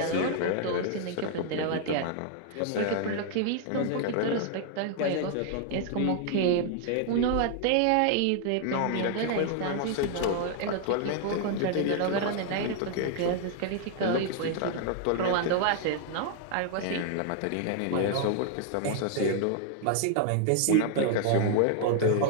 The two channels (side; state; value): both; different; correlation 0.00